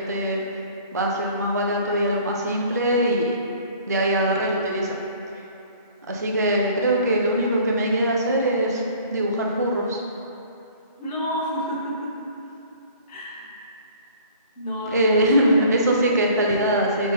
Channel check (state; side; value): inverted; both; correlation -0.51